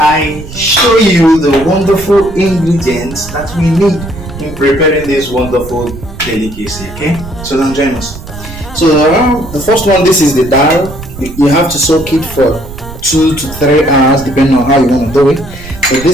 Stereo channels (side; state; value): right; noise; rumble, 13 dB below the sound